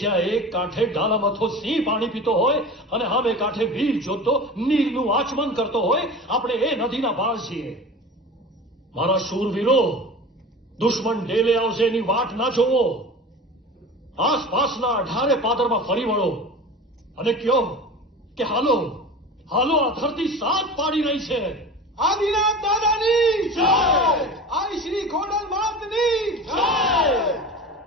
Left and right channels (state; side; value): normal; both; correlation 0.35